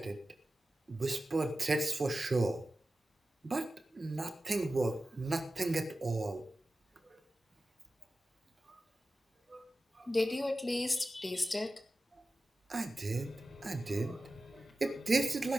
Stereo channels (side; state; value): both; normal; correlation 0.94